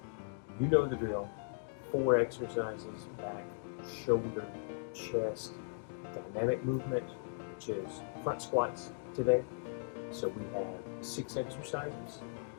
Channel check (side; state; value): right; silent; digital silence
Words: You know the drill. 4 exercises: back, shoulder, chest, dynamic movement, which is front squats today. So we have 6 exercises,